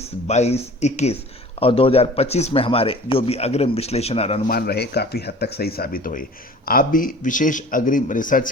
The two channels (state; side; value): normal; both; correlation 0.44